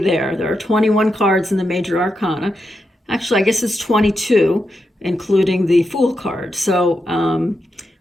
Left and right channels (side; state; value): both; normal; correlation 0.86